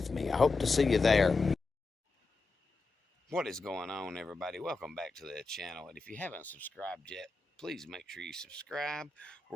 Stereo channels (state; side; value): quieter; right; 3.7 dB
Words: me. I hope to see you there. What is going on, everybody? Welcome back to the channel, and if you haven't subscribed yet, please make sure you subscribe.